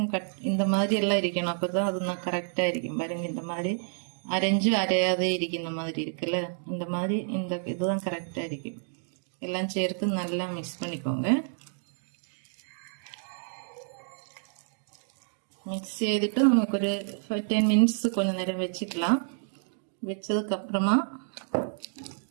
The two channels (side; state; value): left; silent; digital silence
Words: இந்த மாதிரி எல்லாம் இருக்கணும், அப்பதான் அது நான் கரெக்டா இருக்கும். பாருங்க, இந்த மாதிரி அரைஞ்சு அரையாதே இருக்கும். இந்த மாதிரி இருக்குல்ல, இந்த மாதிரி இந்த இதுதான் கரெக்டா இருக்கும். எல்லாம் சேர்த்து நல்லா மிக்ஸ் பண்ணிக்கோங்க. மிக்ஸ் செய்துட்டு நமக்கு ஒரு 10 மினிட்ஸ் கொஞ்சம் நேரம் வச்சுக்கலாம். வச்சதுக்கு அப்புறமா